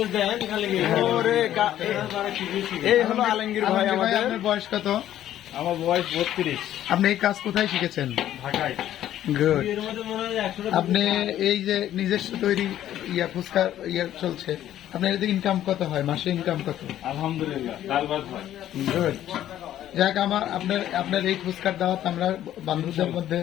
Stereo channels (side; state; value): right; quieter; 12.1 dB